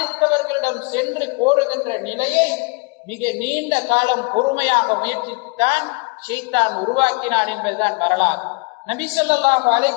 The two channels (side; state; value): right; quieter; 28.6 dB